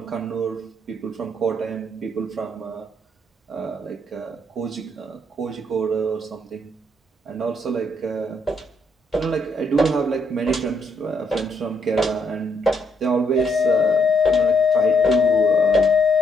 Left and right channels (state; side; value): normal; both; correlation 0.73